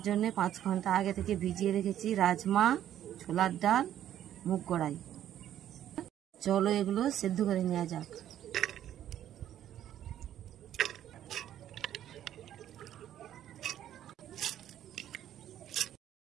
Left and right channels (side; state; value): left; quieter; 11.3 dB